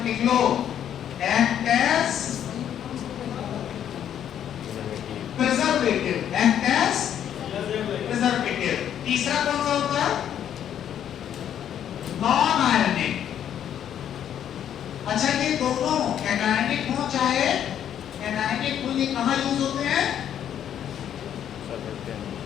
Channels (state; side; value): quieter; right; 9.8 dB